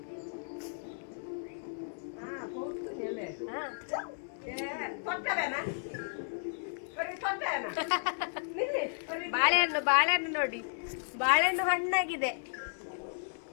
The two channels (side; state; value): right; silent; digital silence